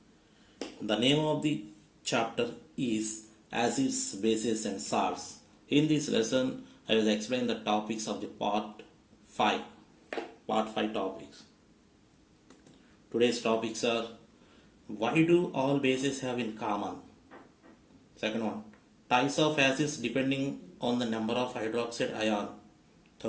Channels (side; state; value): both; identical; correlation 1.00